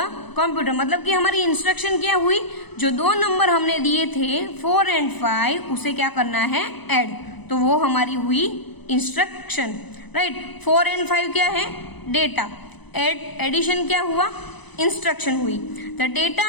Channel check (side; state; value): right; late; 0.99 ms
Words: computer. मतलब कि हमारी इंस्ट्रक्शन क्या हुई? जो 2 नंबर हमने दिए थे 4 and 5, उसे क्या करना है? ऐड। तो वो हमारी हुई इंस्ट्रक्शन, राइट। 4 and 5 क्या है? डेटा। एडिशन क्या हुआ? इंस्ट्रक्शन हुई। The data